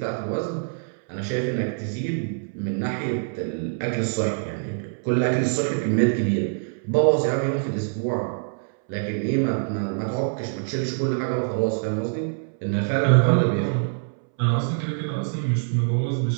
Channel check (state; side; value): silent; left; 62 dB below the other